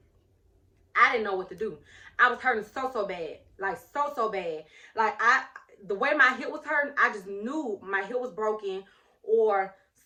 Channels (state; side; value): identical; both; correlation 1.00